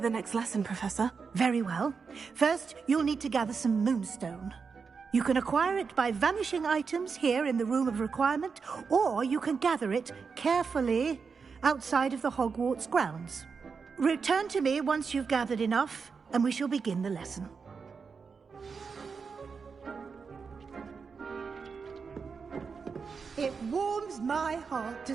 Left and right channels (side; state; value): left; quieter; 5.4 dB